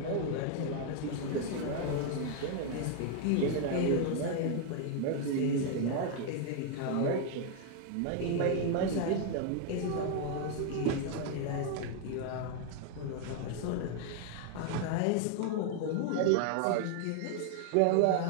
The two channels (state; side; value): different; both; correlation 0.00